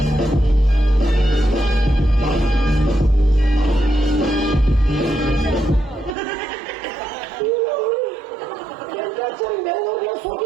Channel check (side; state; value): left; drops out; at 6.2 s